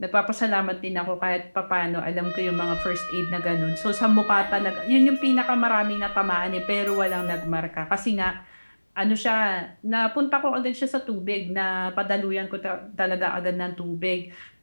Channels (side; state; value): both; inverted; correlation -1.00